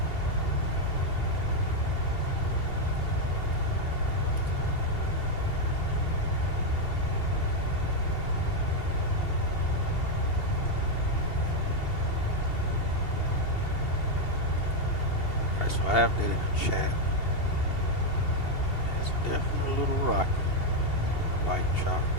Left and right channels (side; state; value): right; late; 2.8 ms